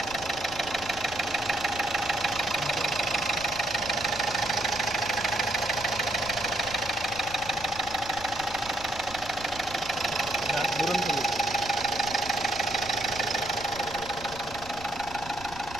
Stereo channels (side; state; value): right; noise; rumble, 16 dB below the sound